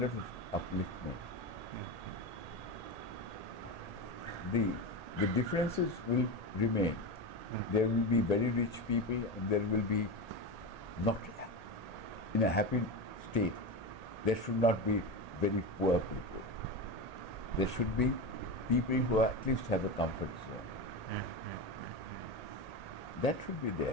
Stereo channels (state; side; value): late; right; 1.8 ms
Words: of upliftment. The differences will remain, There will be very rich people, and there will be not in a happy state. There should not be very poor people. There should be people who at least have a comfort zone. That should be